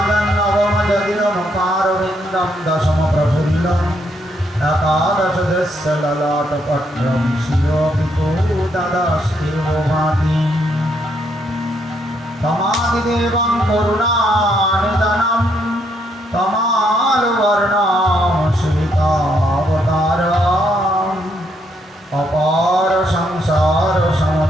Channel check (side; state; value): both; normal; correlation 0.74